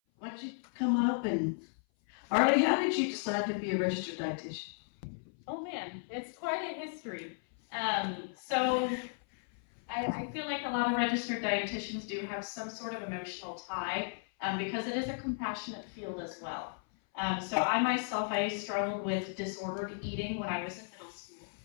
don't you come up and, Arlie, how did you decide to be a registered dietitian? Oh man, it's quite a history. So I feel like a lot of registered dietitians do have some sort of emotional tie because it is a compassionate field as well. So I struggled with disordered eating when I was in middle school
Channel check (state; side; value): silent; right; 55 dB below the other